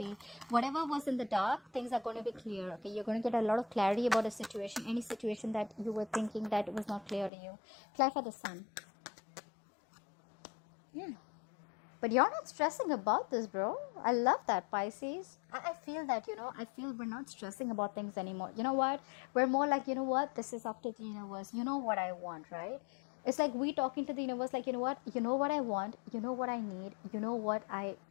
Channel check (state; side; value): drops out; right; at 7.3 s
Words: Whatever was in the dark, things are going to be clear, okay? You're going to get a lot of clarity about a situation, any situation that you were thinking that was not clear to you. Apply for the Sun. Yeah. But you're not stressing about this, bro. I love that, Pisces. I feel that, you know, I feel we're not stressing about things anymore. You know what? We're more like, you know what? This is up to the universe. You know what I want, right? It's like we talking to the universe, like, you know what? You know what I want. You know what I need. You know what I